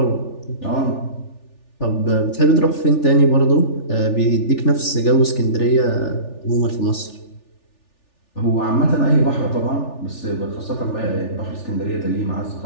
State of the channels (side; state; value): right; late; 3.4 ms